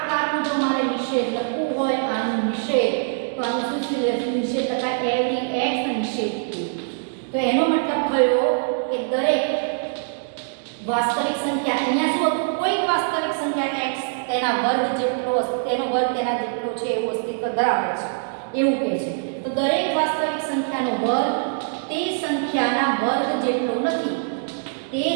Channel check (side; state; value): left; silent; digital silence